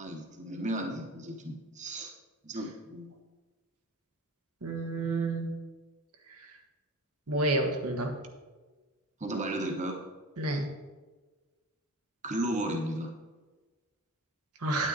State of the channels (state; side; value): normal; both; correlation 0.34